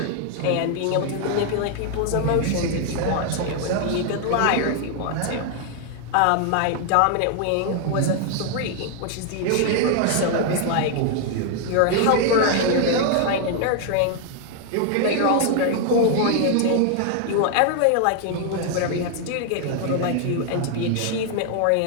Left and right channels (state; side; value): different; both; correlation 0.00